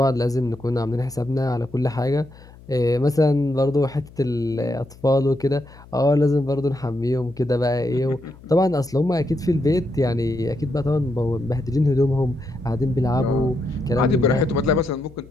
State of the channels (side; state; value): left; noise; hum, 22 dB below the sound